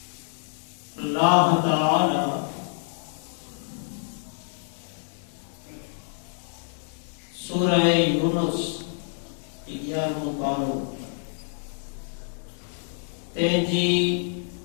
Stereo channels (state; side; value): silent; right; digital silence